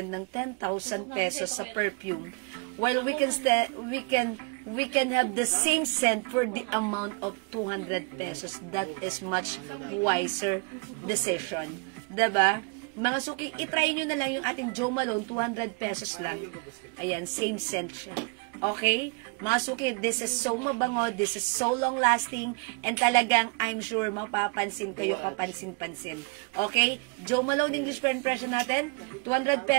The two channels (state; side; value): quieter; left; 32.7 dB